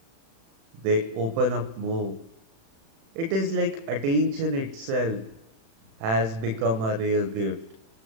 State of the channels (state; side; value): late; left; 36 ms